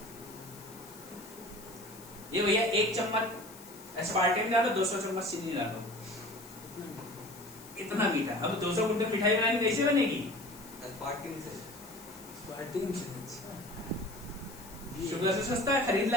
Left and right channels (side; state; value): left; noise; hiss, 18 dB below the sound